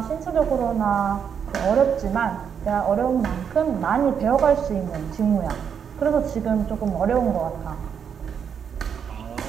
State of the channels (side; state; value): left; quieter; 7.5 dB